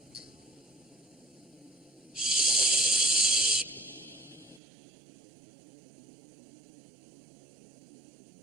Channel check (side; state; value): left; drops out; at 4.6 s